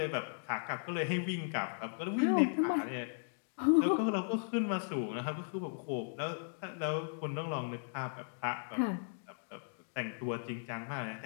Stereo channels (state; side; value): silent; right; digital silence